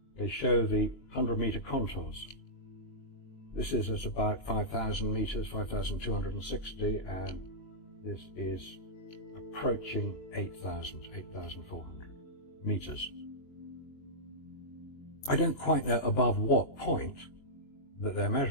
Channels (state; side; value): late; right; 22 ms